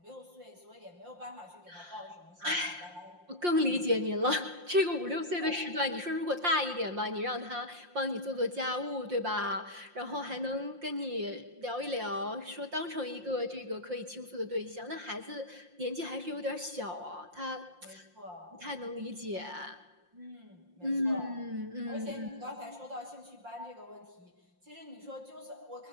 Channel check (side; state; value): left; late; 5.7 ms